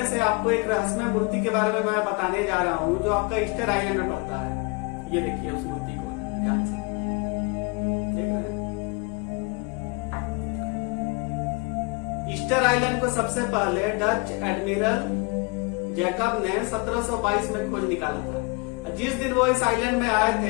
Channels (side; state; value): right; quieter; 28.4 dB